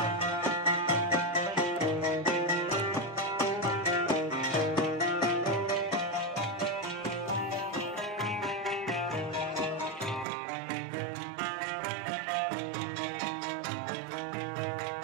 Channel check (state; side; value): drops out; left; at 10.2 s